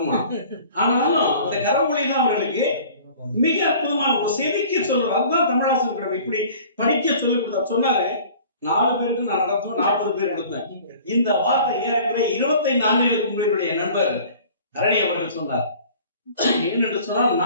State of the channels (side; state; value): both; inverted; correlation -0.47